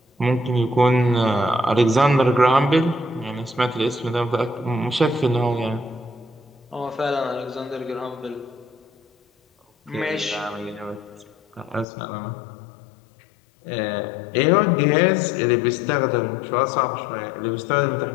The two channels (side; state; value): right; drops out; at 11.9 s